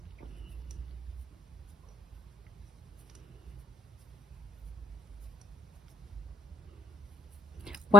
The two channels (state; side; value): normal; both; correlation 0.65